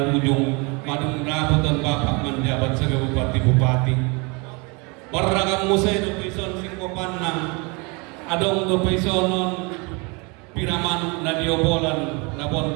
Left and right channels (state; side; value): quieter; left; 29.6 dB